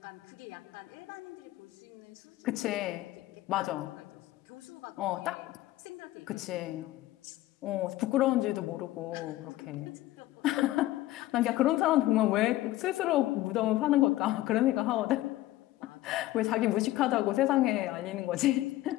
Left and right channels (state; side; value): quieter; right; 16.1 dB